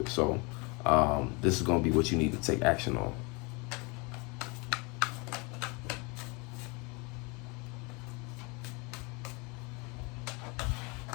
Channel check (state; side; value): quieter; right; 29.2 dB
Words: it. So this is gonna be what you need to take action on.